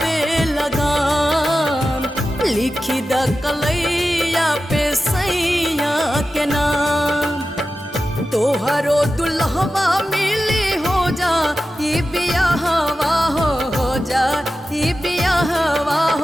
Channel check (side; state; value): both; normal; correlation 0.93